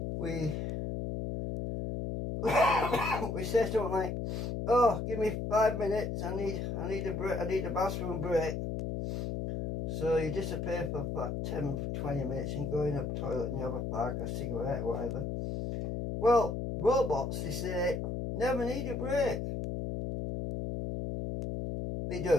We we say something like, oh, give me 5 minutes, I need a break, I need a bathroom break. So you disappear for about 10-20 minutes and go in a toilet and you have a fag, a cigarette, whatever. Well, robots, they say, never need a break. They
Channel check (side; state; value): left; noise; hum, 3 dB below the sound